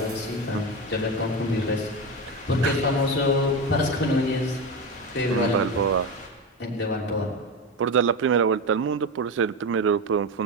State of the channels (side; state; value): both; normal; correlation 0.18